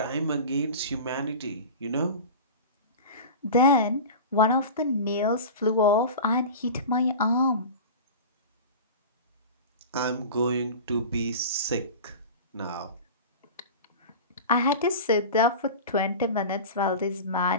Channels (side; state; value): both; inverted; correlation -0.32